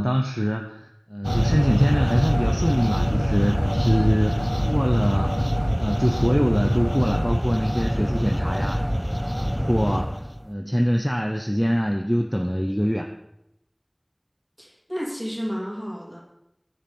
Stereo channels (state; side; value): identical; both; correlation 1.00